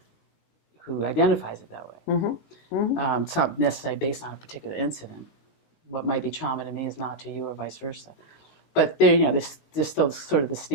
who identifies it that way. It's not necessarily based on a particular incident. What might be trauma to me is not to you, or vice versa. But there's still sort of the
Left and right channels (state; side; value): late; right; 19 ms